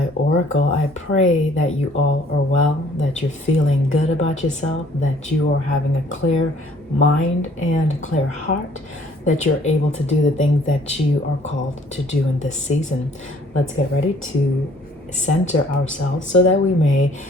Oracle. I pray that you all are well, that you're feeling good about yourself, that you are having a clear mind and clear heart, that you're able to do the things that you are called to do in this season. Let's get ready to center ourselves so that we may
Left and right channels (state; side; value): normal; both; correlation 0.58